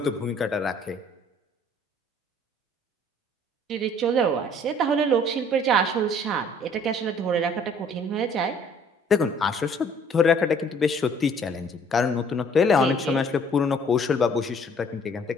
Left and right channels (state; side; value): normal; both; correlation 0.57